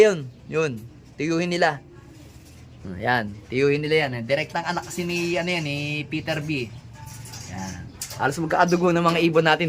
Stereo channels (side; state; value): both; identical; correlation 1.00